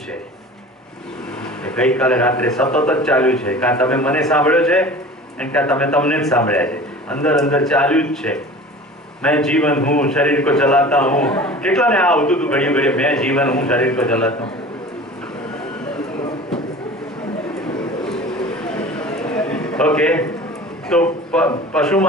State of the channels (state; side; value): normal; both; correlation 0.39